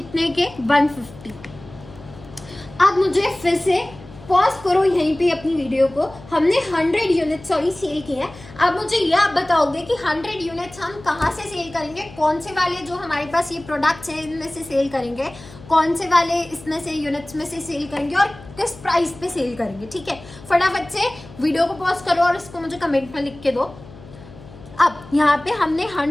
के? 150। अब मुझे फिर से पॉज करो यहीं पे अपनी वीडियो को। हमने 100 यूनिट्स सेल किए हैं। अब मुझे ये आप बताओगे कि 100 यूनिट्स हम कहाँ से सेल करेंगे, कौन से वाले जो हमारे पास ये प्रोडक्ट्स हैं इनमें से सेल करेंगे, कौन से वाले इसमें से यूनिट्स में से सेल करेंगे और किस प्राइस पे सेल करेंगे, ठीक है। फटाफट से वीडियो को पॉज करो और इसको मुझे कमेंट में लिख के दो। अब यहाँ पे हमने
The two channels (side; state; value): left; noise; hum, 19 dB below the sound